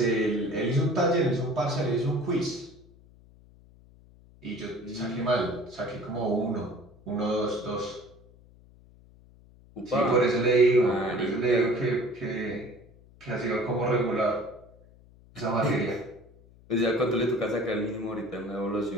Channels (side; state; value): left; noise; hum, 25 dB below the sound